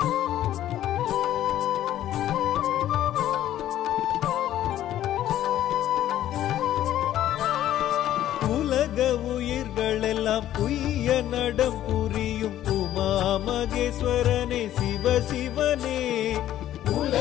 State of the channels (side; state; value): right; quieter; 12.5 dB